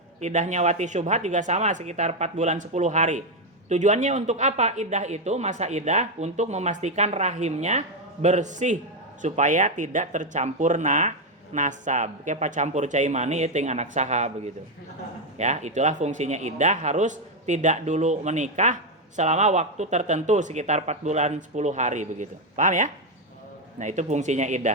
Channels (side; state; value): both; normal; correlation 0.05